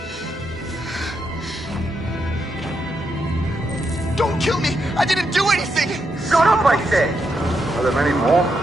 Don't kill me! I didn't do anything! Shut up, I said! Are there many more?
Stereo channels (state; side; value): normal; both; correlation 0.82